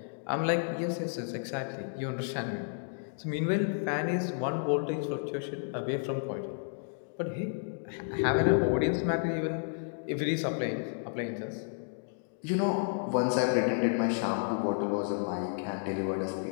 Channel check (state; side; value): silent; right; digital silence